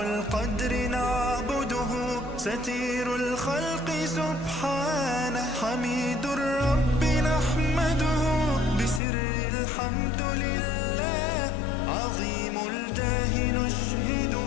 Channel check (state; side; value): drops out; right; at 9.0 s